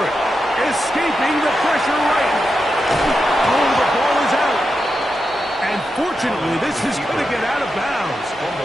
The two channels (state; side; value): normal; both; correlation 0.88